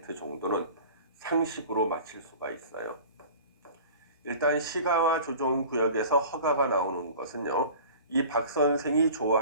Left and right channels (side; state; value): both; inverted; correlation -0.41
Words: 정도는 상식으로 맞힐 수가 있어요. 일단 시가와 조정구역에서 허가가 나오는 것은요, 이 박 선생이